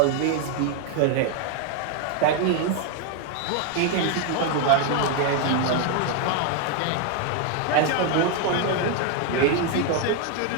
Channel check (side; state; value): both; different; correlation 0.01